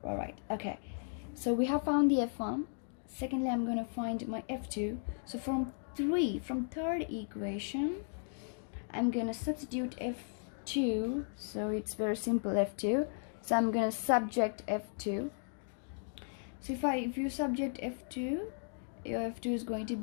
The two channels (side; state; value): right; silent; digital silence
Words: All right, okay, so we have found the f1. Secondly, I'm going to find my f2. So from third equation, I'm going to substitute f2. So it's very simple, f2. So I'm going to subject f2. So if you subject f2, your f2 is going to